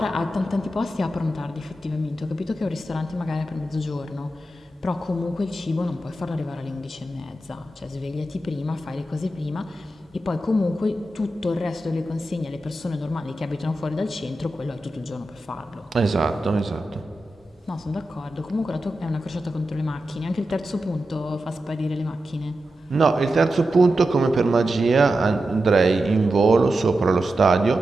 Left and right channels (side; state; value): both; normal; correlation 0.90